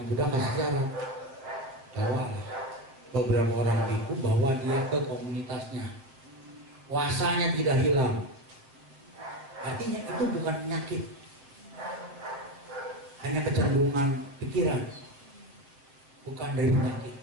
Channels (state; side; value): late; left; 7.5 ms